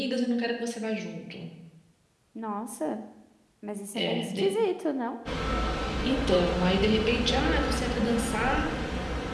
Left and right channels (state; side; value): identical; both; correlation 1.00